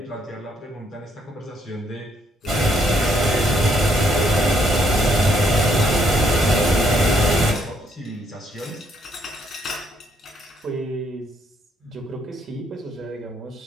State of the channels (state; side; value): normal; both; correlation 0.70